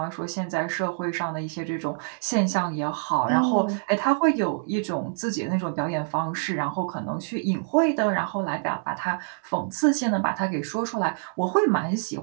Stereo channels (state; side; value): silent; left; 61 dB below the other